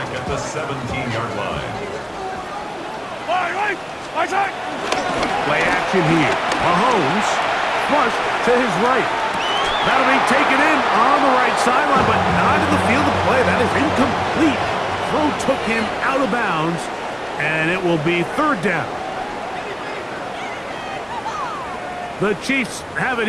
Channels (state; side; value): identical; both; correlation 1.00